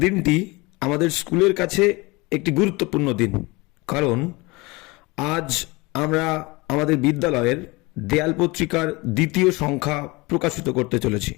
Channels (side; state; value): right; quieter; 24.2 dB